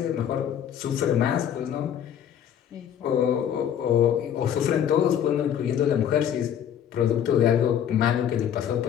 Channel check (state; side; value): quieter; right; 9.4 dB